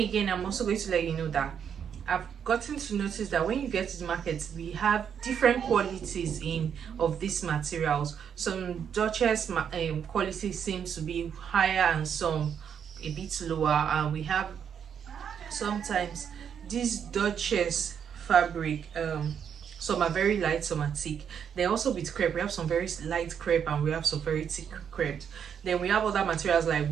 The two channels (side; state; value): left; quieter; 7.9 dB